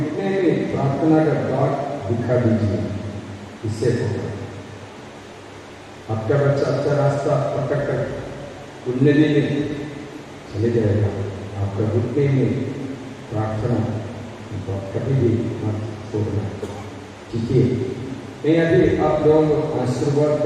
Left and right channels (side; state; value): both; identical; correlation 1.00